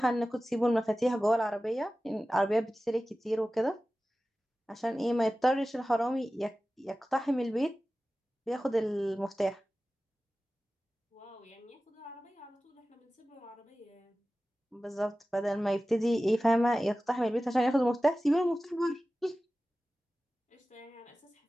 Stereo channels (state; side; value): normal; both; correlation 0.96